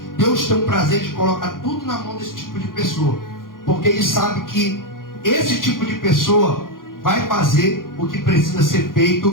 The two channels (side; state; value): right; late; 0.90 ms